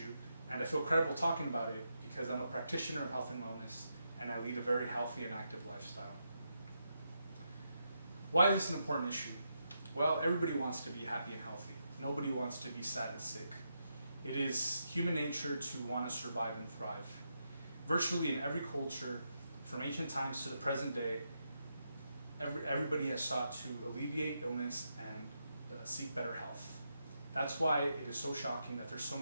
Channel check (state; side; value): inverted; both; correlation -0.84